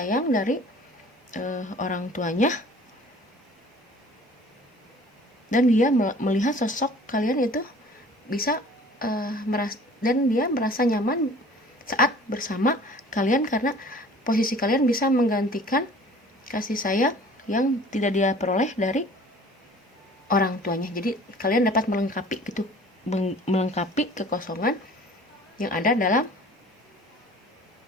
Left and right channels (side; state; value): both; normal; correlation 0.48